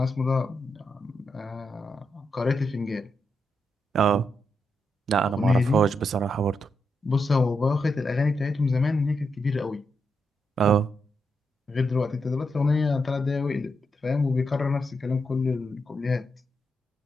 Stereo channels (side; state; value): both; normal; correlation 0.83